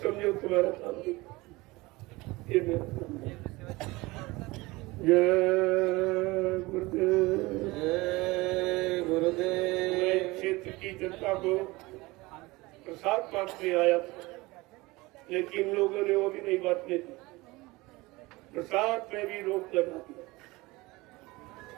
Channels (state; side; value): quieter; left; 21.9 dB